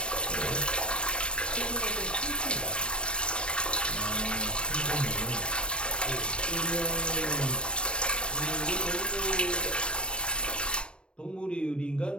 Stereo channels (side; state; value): right; late; 0.057 ms